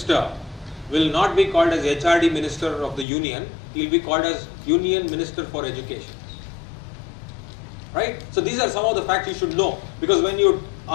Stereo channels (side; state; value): right; drops out; at 3.1 s